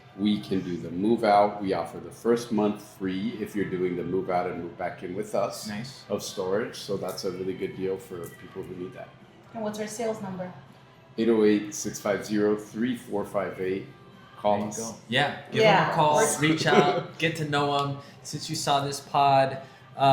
we can do the move out. We offer the first month free if you're doing the move out and move back in with us. Nice. Of storage. So that's a really good deal for people who need that. And what's our sales number? 808-650-3458. Call us. Go. Yeah, give them a call, reach out, get to know them. Since you saw this pod,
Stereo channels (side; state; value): both; identical; correlation 1.00